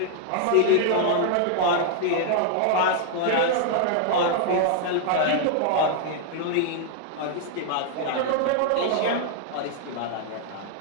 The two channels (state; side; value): different; both; correlation 0.00